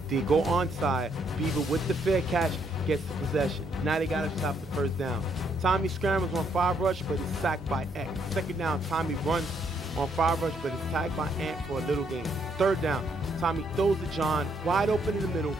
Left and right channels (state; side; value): normal; both; correlation 0.72